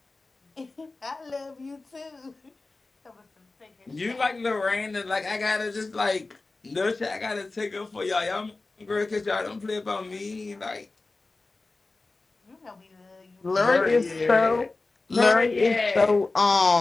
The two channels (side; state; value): right; quieter; 3.4 dB